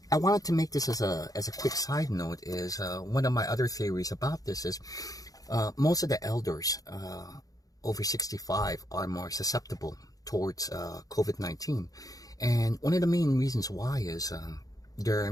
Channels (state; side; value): late; right; 0.17 ms